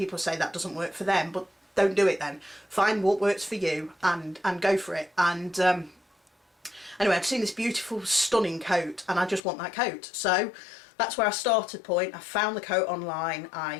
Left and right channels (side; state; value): right; drops out; at 9.4 s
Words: say that doesn't work for them, but don't do it then. Find what works for you and go for it. And anyway, I've seen this beautiful, stunning coat, and I just want that coat. So that's where I started point. I found the coat online,